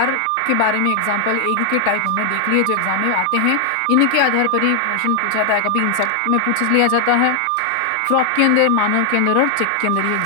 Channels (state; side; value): different; both; correlation 0.00